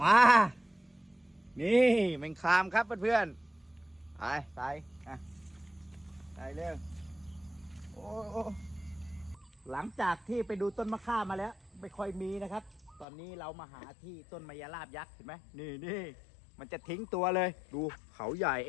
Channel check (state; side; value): drops out; right; at 13.1 s